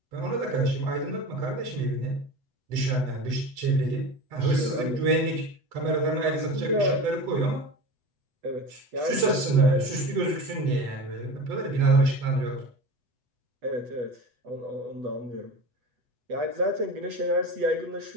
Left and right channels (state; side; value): late; left; 8.0 ms